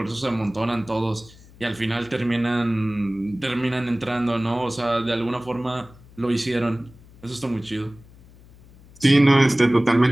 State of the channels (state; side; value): noise; left; hum, 24 dB below the sound